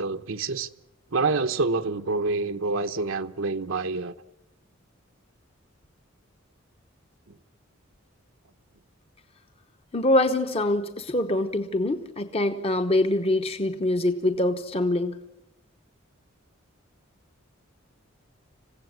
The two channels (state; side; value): normal; both; correlation 0.31